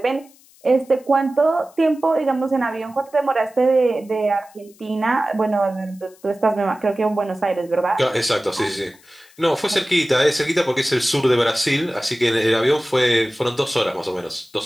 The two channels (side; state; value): left; noise; hiss, 28 dB below the sound